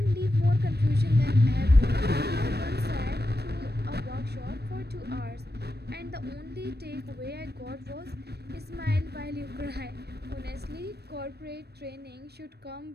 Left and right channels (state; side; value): late; left; 0.47 ms